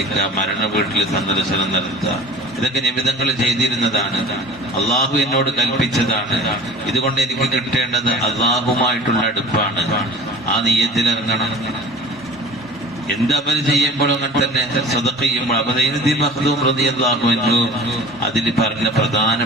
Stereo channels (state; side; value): normal; both; correlation 0.41